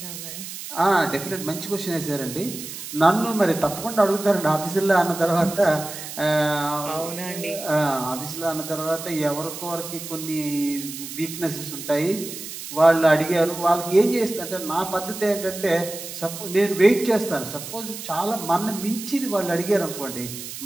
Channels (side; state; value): right; noise; hiss, 10 dB below the sound